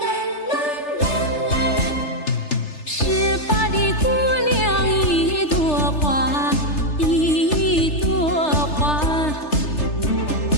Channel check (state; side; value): late; right; 3.3 ms